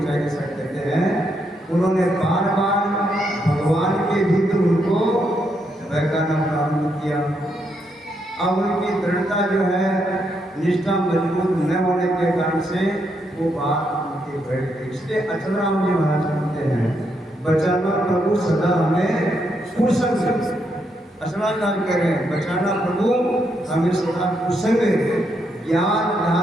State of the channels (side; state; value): both; normal; correlation 0.78